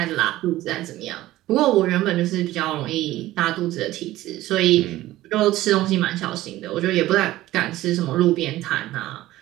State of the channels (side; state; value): left; quieter; 15.9 dB